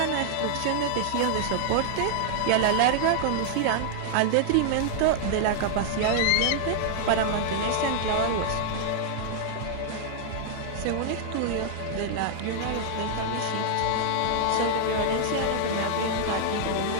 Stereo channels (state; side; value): different; both; correlation -0.01